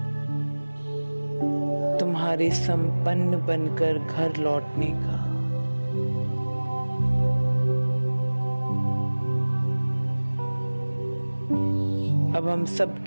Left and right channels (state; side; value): inverted; both; correlation -1.00